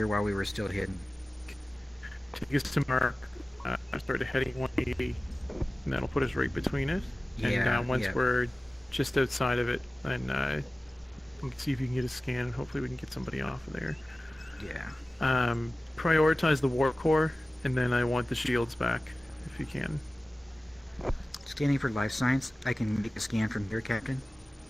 while we were still hidden. Take us to mark. Start heading 180, and that'll put us right between it. And Yeah, once yeah. we're just outside of it, then we can see if you can get a scan, and hopefully we can get somebody off of there. Yeah. Prioritize the warp core, and then I want the shields back, if you can. Scanning for life signs. I can make a scan from here, Captain.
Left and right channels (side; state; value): both; normal; correlation 0.97